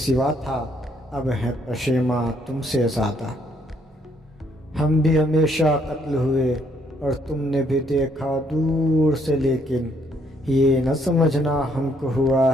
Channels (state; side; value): normal; both; correlation 0.69